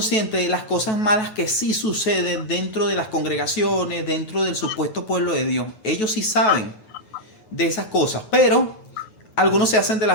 de las cosas malas que sí suceden dentro de las congregaciones, dentro del supuesto pueblo de Dios. Ellos sí saben de esas cosas, pero algunos se hacen de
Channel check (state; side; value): late; right; 9.3 ms